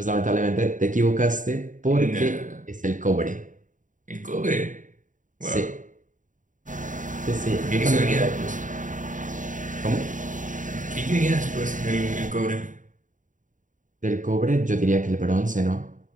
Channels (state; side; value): late; left; 0.37 ms